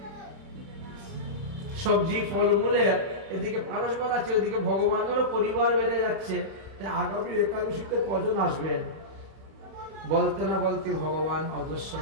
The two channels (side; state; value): left; late; 31 ms